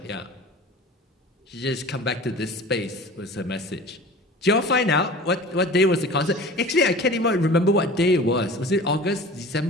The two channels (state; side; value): normal; both; correlation 0.39